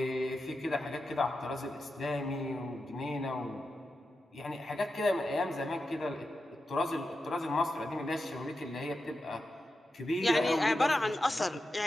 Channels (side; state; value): both; normal; correlation 0.90